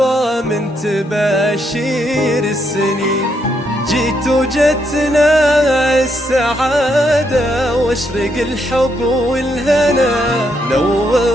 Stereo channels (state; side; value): normal; both; correlation 0.77